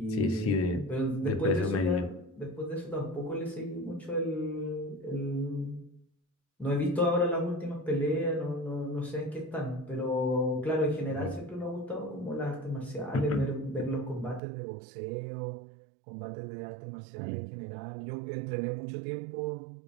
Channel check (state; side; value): drops out; left; at 14.4 s